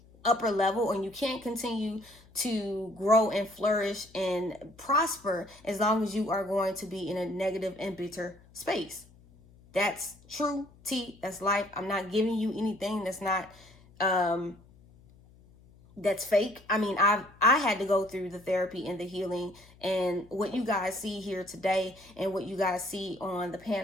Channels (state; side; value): noise; left; hum, 26 dB below the sound